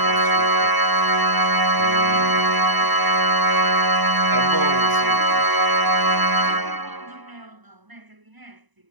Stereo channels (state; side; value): late; left; 1.0 ms